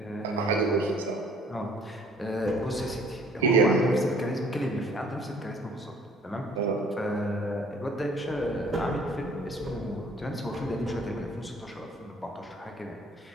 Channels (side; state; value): both; normal; correlation 0.56